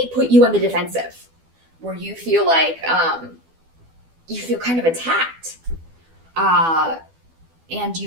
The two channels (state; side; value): late; left; 12 ms